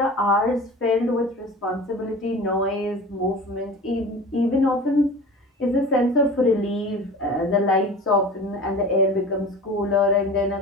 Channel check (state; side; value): normal; both; correlation 0.37